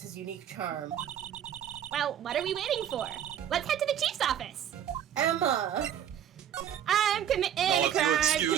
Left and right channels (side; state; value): left; quieter; 9.8 dB